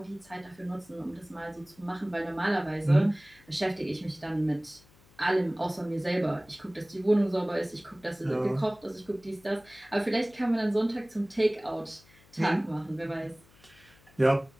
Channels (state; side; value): noise; left; hum, 28 dB below the sound